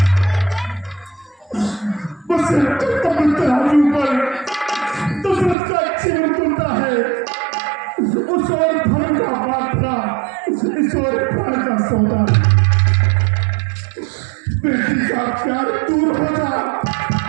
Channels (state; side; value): drops out; left; at 5.6 s